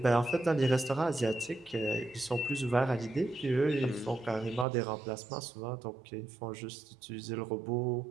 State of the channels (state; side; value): drops out; left; at 4.7 s